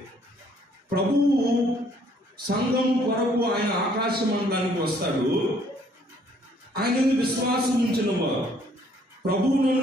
ప్రభువు సంఘం కొరకు ఆయన ఆకాశ మండలానికి వస్తాడు. ఆయన విశ్వాసం ఉంచిన వారు, ప్రభువులను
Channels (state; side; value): normal; both; correlation 0.63